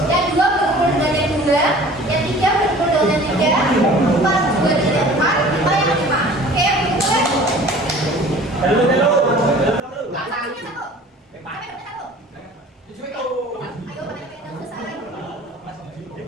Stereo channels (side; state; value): both; normal; correlation 0.46